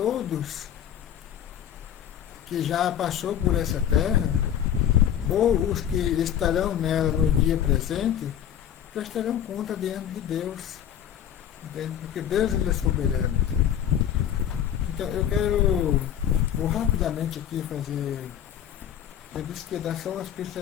que já passou por essa terra, ou os que estarão nela no dia presente, prestarão conta diante de Deus, entende? Porque Deus, ele é soberano. Então eu vou rapidamente aqui fazer, eu disse que ia dar só umas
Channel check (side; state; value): right; quieter; 9.9 dB